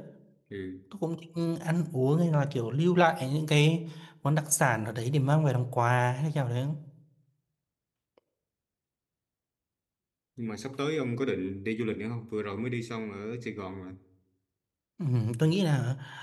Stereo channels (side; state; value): both; identical; correlation 1.00